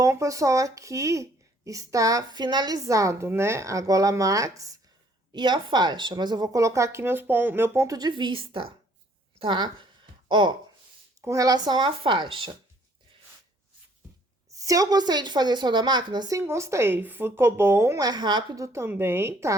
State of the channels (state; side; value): normal; both; correlation 0.61